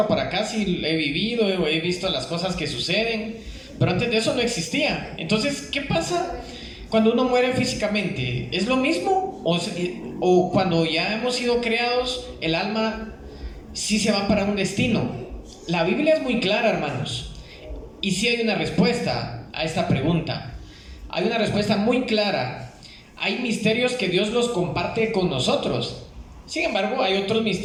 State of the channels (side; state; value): both; identical; correlation 1.00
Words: para acá sí he vivido, he visto las cosas que suceden, pero antes de eso no existía. Entonces, ¿qué pasa cuando uno muere físicamente? ¿Es lo mismo? ¿O cuando ya hemos sido creados, el alma sí se va para un destino? La Biblia es muy clara, hermanos, y sí hay una respuesta a esta pregunta. Hay una respuesta muy clara. Hay misterios que Dios los comparte con nosotros. Sin embargo, hay otros